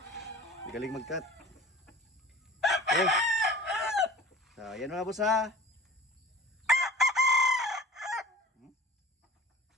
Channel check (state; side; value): normal; both; correlation 0.42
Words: Magaling mag-cut. Okay. So, ayan mga boss ha.